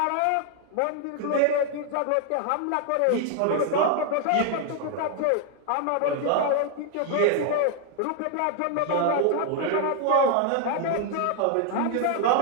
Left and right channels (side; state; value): both; different; correlation 0.00